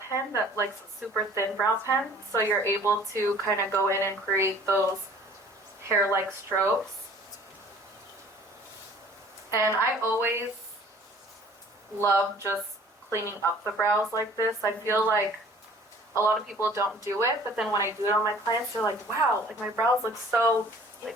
that like a super thin brow pen, so you're able to kind of go in and create those hair-like strokes. And I always love just cleaning up the brows like this. I feel like a lot of people don't do it, but then when I do it on my clients, they're like, wow, like my brows look so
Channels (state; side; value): normal; both; correlation 0.51